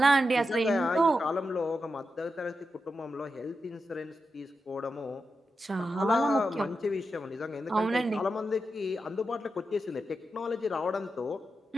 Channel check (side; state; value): both; normal; correlation 0.88